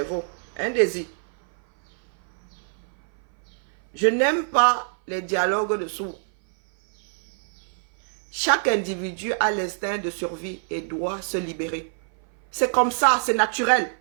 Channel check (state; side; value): silent; left; 58 dB below the other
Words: Un désir. Je n'aime pas les dialogues de sourds. Chaque individu a l'instinct de survie et doit se libérer. C'est comme ça, c'est naturel.